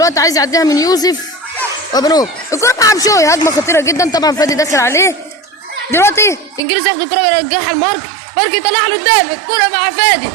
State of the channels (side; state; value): left; drops out; at 6.6 s